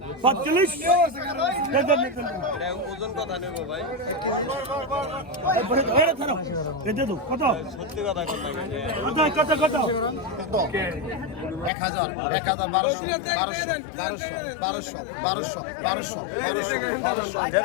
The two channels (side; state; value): right; drops out; at 11.7 s